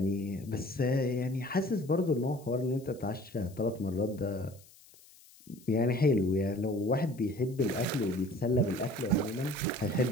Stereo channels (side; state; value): left; noise; hiss, 25 dB below the sound